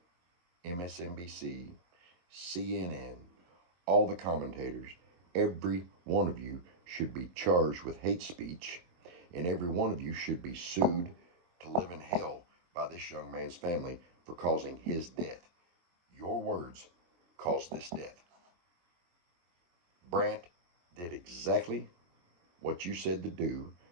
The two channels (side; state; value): left; late; 23 ms